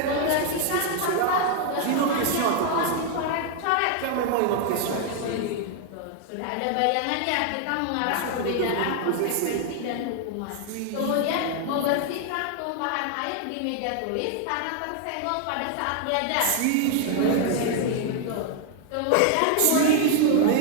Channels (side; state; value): both; different; correlation 0.00